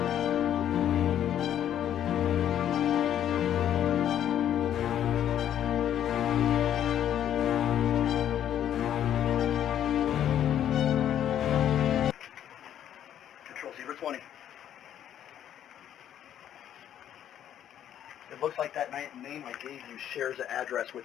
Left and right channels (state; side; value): quieter; right; 10.5 dB